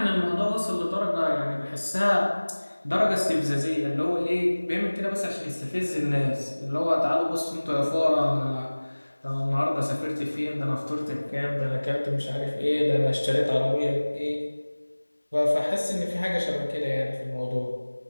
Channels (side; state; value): both; inverted; correlation -1.00